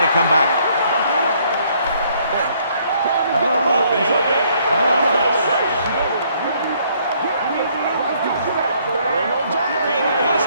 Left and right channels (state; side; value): inverted; both; correlation -0.65